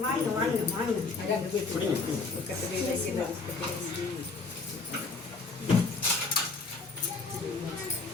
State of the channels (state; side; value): quieter; right; 4.0 dB